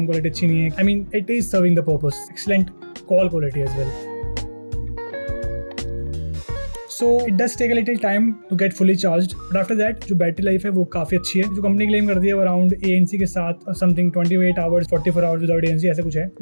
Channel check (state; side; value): inverted; both; correlation -1.00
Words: क्वालिटी अच्छी नहीं है. I mean, it is serving the purpose. Excellent call quality as well. So it does take a little time to get fully charged, but after that जो बैटरी लाइफ है वो काफी अच्छी है. जो कंपनी क्लेम करती है वो अराउंड ANC के साथ something 28 hours 44 hours without ANC ऐसे कुछ है.